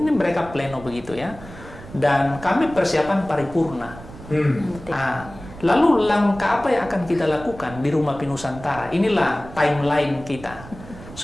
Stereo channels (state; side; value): noise; right; rumble, 16 dB below the sound